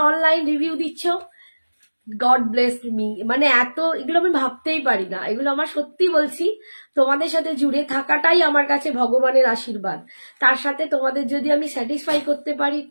অনলাইন রিভিউ দিচ্ছ, গড ব্লেস মি। মানে এত, এগুলো আমি ভাবতেই পারি না। এগুলো আমার সত্যি বলছি, তোমাদের সাথে জুড়ে থাকাটাই আমার কাছে ভগবানের আশীর্বাদ। তার সাথে তোমাদের যদি আমি স্যাটিসফাই করতে পারি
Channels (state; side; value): inverted; both; correlation -1.00